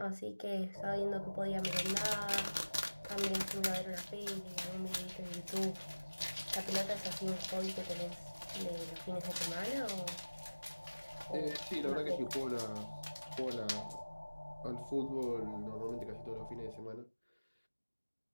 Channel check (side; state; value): both; inverted; correlation -1.00